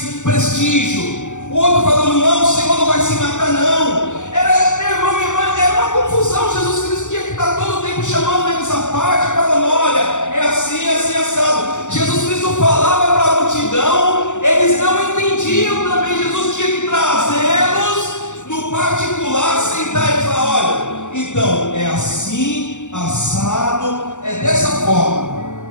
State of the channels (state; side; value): late; right; 0.85 ms